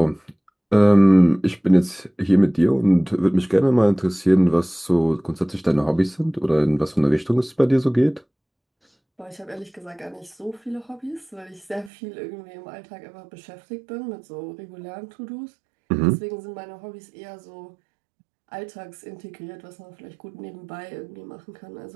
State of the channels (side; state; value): left; drops out; at 11.9 s